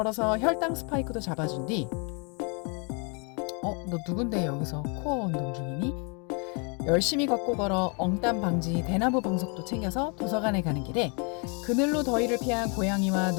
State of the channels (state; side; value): quieter; right; 34.9 dB